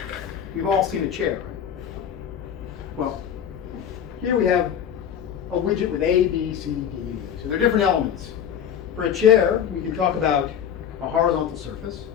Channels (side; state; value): right; quieter; 8.8 dB